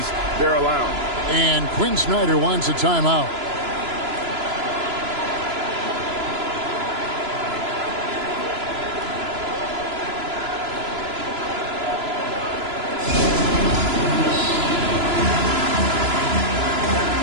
they're allowing. And Quinn Snyder wants a timeout.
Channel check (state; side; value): late; left; 3.0 ms